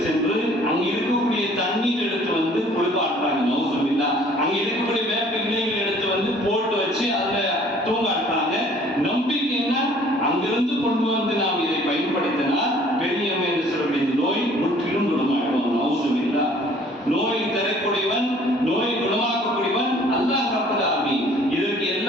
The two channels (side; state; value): both; normal; correlation 0.55